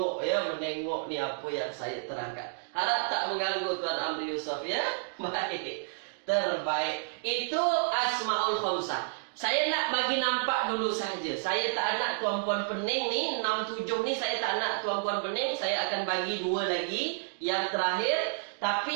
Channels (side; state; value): left; silent; digital silence